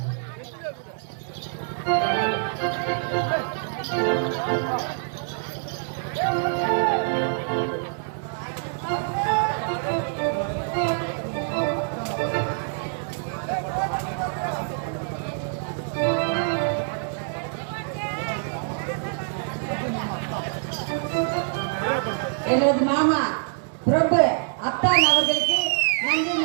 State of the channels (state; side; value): silent; left; 61 dB below the other